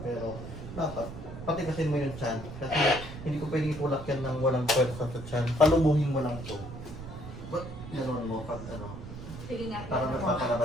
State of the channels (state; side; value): noise; right; rumble, 11 dB below the sound